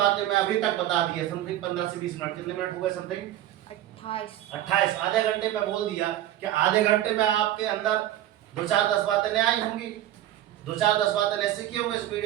मैं अभी तक बता दी है, समथिंग 15 से 20 मिनट, कितने मिनट हो गए, समथिंग 28, आधे घंटे में बोल दिया कि आधे घंटे में आपके अंदर 2-4-10 बातें नहीं आई होंगी, 2-4-10 बातें नहीं सीखे होंगे, इस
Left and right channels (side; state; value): left; quieter; 13.1 dB